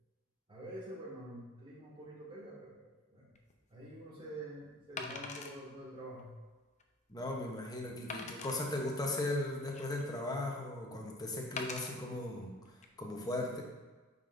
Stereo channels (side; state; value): both; normal; correlation 0.48